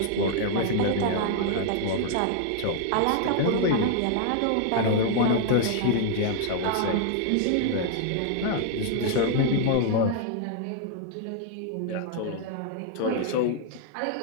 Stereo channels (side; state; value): both; different; correlation 0.00